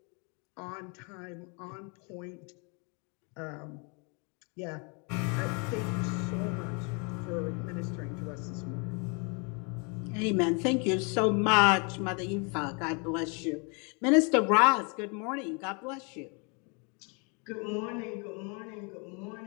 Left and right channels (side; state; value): right; quieter; 34.4 dB